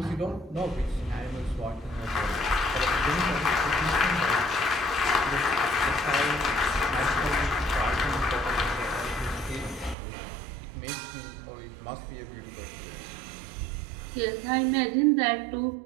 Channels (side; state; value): left; drops out; at 10.0 s